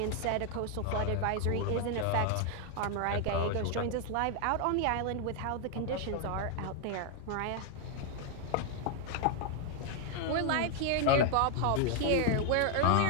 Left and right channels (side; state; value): both; different; correlation 0.00